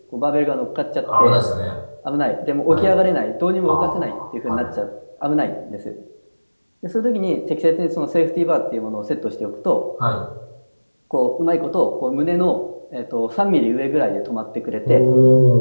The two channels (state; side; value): inverted; both; correlation -1.00